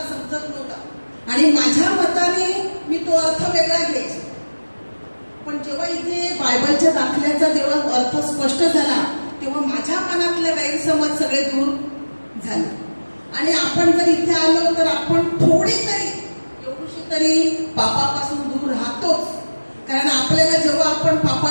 समजत नव्हता आणि माझ्या मताने मी तो अर्थ वेगळा घ्यायचा, पण जेव्हा इथे बायबलच्या दाखल्याचा जेव्हा अर्थ स्पष्ट झाला तेव्हा माझ्या मनातले गैरसमज सगळे दूर झाले. आणि आपण जर इथे आलो तर आपण थोडी तरी एवढीशी तरी पापापासून दूर राहतोच. कारण आपल्याला जेव्हा आपण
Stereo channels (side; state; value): both; inverted; correlation -1.00